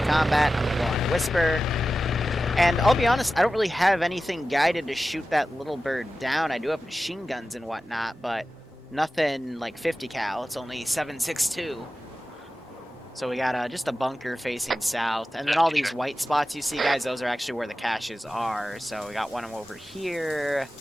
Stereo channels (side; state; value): both; normal; correlation 0.94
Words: combat. I'm going to go on Whisper. And I'll be honest, I don't really have anything guided to shoot that little bird down. I do have machine guns and whatnot, but nothing like 50 cal. It's only 7.62. So we got just a bunker facing south. And then all these white spots you see, guys, those are actually where the caches are. So we got one over here,